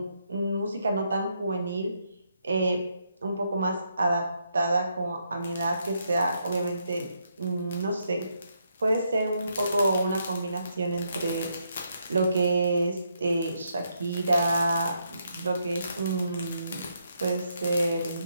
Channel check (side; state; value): both; inverted; correlation -0.77